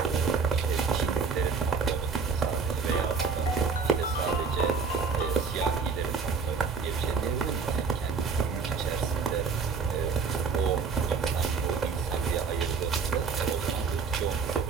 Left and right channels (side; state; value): left; quieter; 5.3 dB